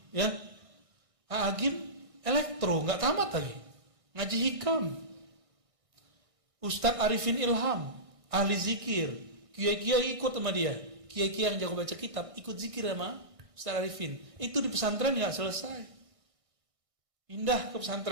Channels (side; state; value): left; late; 1.6 ms